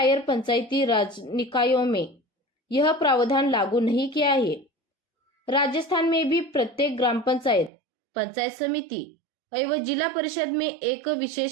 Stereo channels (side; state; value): left; drops out; at 7.7 s